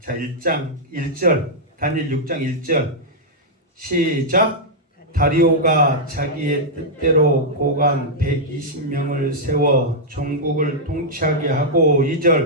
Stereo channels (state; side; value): normal; both; correlation -0.07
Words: 1장 1절 다니엘 6장 1절 시작. 다리오가 자기의 뜻대로 고관 120명을 세워 전국을 통치하게 하고